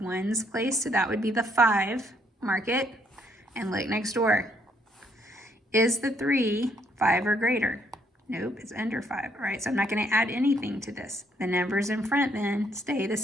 place, so that would be the 5. Mark it and look next door. Is the 3 5 or greater? Nope, it's under 5. All right, so I'm not going to add anything to this. The numbers in front then stay the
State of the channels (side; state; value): both; normal; correlation 0.70